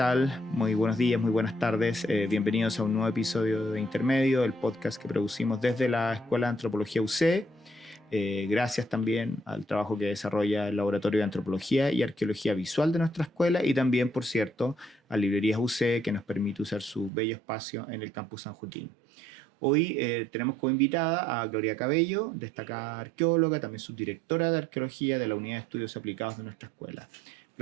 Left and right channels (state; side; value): drops out; left; at 17.1 s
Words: Muy buenos días, muy buenas tardes. Bienvenidos a un nuevo episodio de Intermedio, el podcast que producimos desde la Escuela de Antropología UC. Gracias también al trabajo que desarrolla el Laboratorio de Antropología y Arqueología Visual de nuestra escuela y también, por cierto, a Librerías UC, que nos permite usar su bello espacio en el Campus San Joaquín. Hoy tenemos como invitada a Gloria Cabello, destacada arqueóloga, también subdirectora de Arqueología de la Unidad de Estudios Aplicados de nuestra escuela.